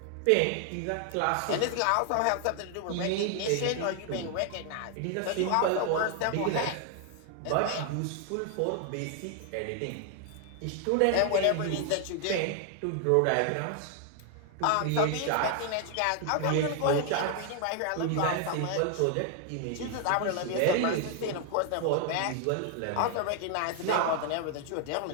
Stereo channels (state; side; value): different; both; correlation 0.00